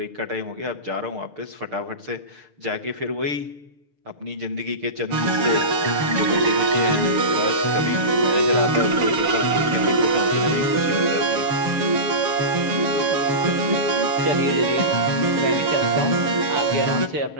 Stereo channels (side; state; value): left; late; 6.7 ms